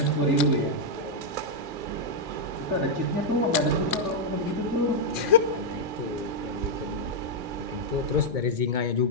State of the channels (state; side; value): late; left; 2.2 ms